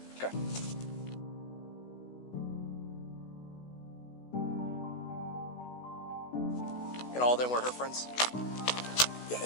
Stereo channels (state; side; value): late; right; 16 ms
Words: Okay. And all of them were her friends? Yeah,